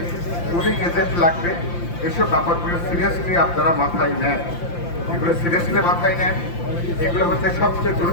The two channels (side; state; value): right; late; 5.8 ms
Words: পুলিং এজেন্ট লাগবে। এসব ব্যাপারগুলো সিরিয়াসলি আপনারা মাথায় নেন, এগুলো সিরিয়াসলি মাথায় নেন। এগুলো হচ্ছে সবচেয়ে